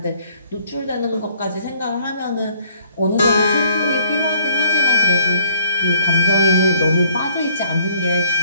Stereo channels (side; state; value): both; inverted; correlation -0.60